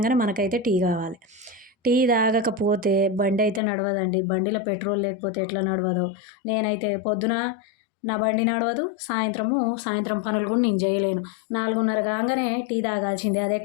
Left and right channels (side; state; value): right; drops out; at 3.6 s